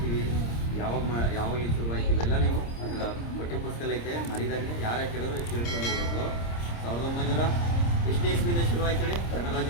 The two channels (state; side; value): late; right; 26 ms